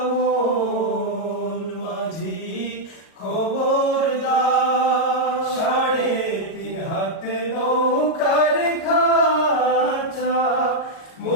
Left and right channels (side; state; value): right; late; 37 ms